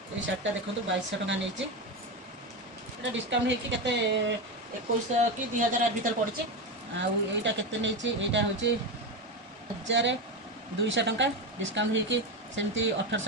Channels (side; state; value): both; normal; correlation 0.15